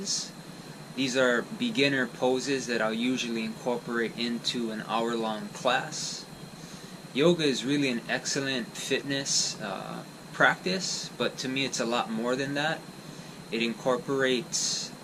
These are beginner poses that I'll usually incorporate into an hour-long class. Yoga is really an excellent fitness practice, but to me it's a lot more than that. It incorporates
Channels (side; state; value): both; identical; correlation 1.00